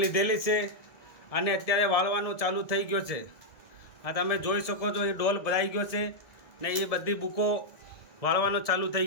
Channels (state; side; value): late; right; 1.7 ms